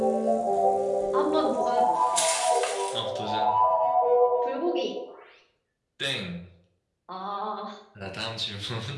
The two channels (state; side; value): identical; both; correlation 1.00